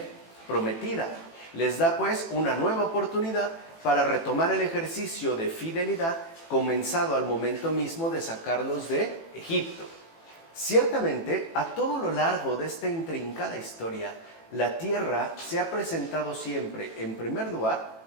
Prometida. Les da pues una nueva oportunidad para retomar el ejercicio de fidelidad comenzado al momento mismo de sacarlos de Egipto. Ciertamente, a todo lo largo de esta intrincada historia, la tierra se ha presentado siempre, en primer lugar,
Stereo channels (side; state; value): right; late; 18 ms